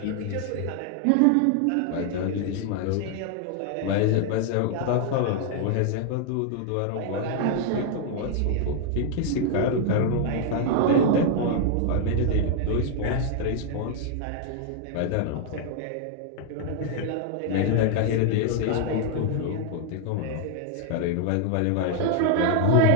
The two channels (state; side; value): different; both; correlation 0.00